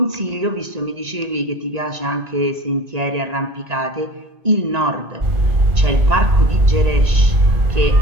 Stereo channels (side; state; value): left; late; 1.9 ms